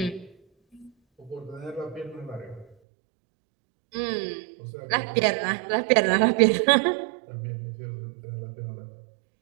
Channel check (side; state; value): left; drops out; at 2.8 s